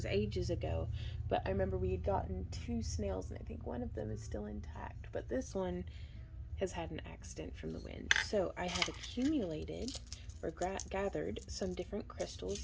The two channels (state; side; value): identical; both; correlation 1.00